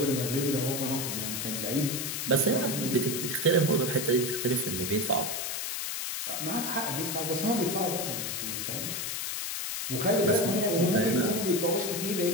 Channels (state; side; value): noise; left; hiss, 3 dB below the sound